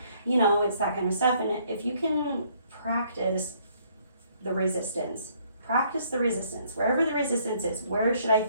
It's that kind of stuff. And if you can practice the resistance, wherever the resistance is, where should I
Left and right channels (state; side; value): inverted; both; correlation -0.65